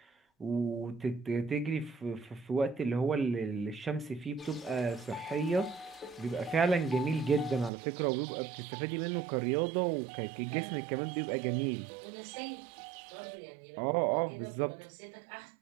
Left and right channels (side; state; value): left; drops out; at 7.7 s